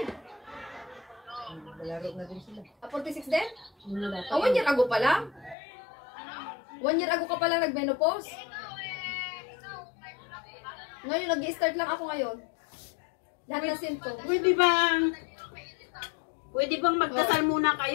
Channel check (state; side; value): drops out; right; at 5.6 s